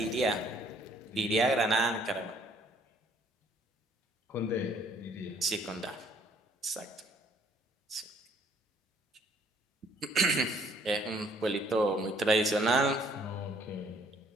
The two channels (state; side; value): normal; both; correlation 0.62